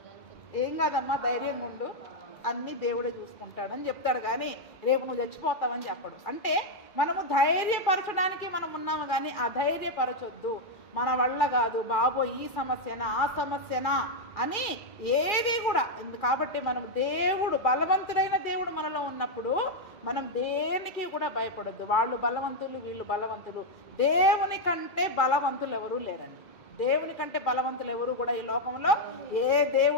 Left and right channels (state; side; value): late; right; 2.4 ms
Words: ఏం కాదమ్మా, ధైర్యం ఉండు, అన్నీ దేవుడే చూసుకుంటాడని చెప్తాడు. కానీ రేపు నువ్వు చచ్చిపోతావని చెప్పడు. అంటే మనము ధైర్యపరచడానికి మనం ఉన్నాము, కానీ అధైర్యపరచొద్దు. మన వల్ల కాదు బాబో, ఈ సమస్యనా ఆ సమస్యనా అని ఏది కూడా. కాబట్టి మనం దేవుడు, బలవంతుడైన దేవుడు మనలో ఉన్నప్పుడు మనం దేనికి కూడా భయపడొద్దు. వాళ్ళు బలవంతులు, వీళ్ళు బలవంతులు, దేవుని కంటే బలవంతులు ఎవరూ లేరండి. దేవుని కంటే బలవంతులు ఎవరు కూడా ఈ లోకంలో ఏ